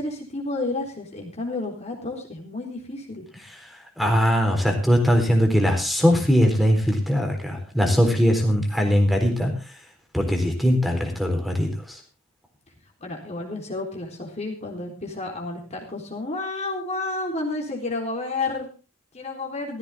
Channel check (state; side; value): normal; both; correlation 0.82